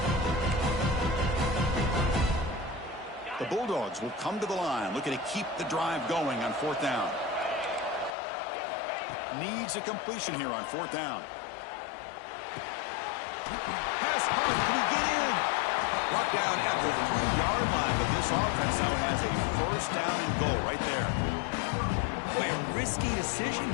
The Bulldogs will come to the line, looking to keep the drive going on 4th down. Needs a completion here on 4th down. Pass punt. Can he get in? Brought down at the 3-yard line, but this offense now has a 1st down and goal right there. Boy, a risky decision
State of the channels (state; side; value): drops out; right; at 8.2 s